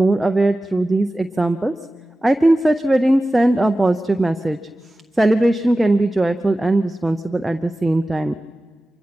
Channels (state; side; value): normal; both; correlation 0.95